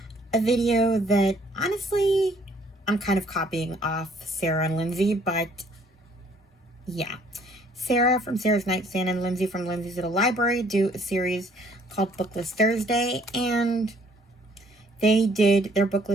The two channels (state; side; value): normal; both; correlation 0.62